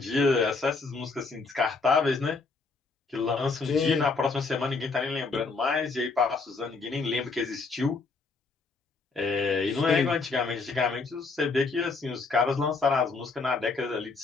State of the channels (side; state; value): right; quieter; 4.2 dB